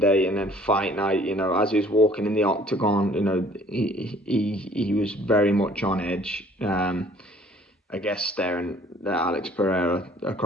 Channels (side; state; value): both; normal; correlation 0.56